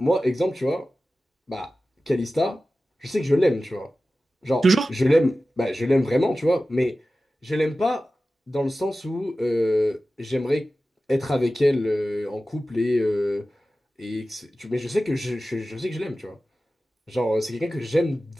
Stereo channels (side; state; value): both; normal; correlation 0.95